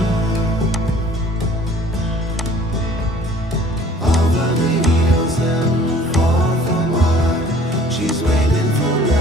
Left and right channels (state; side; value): normal; both; correlation 0.52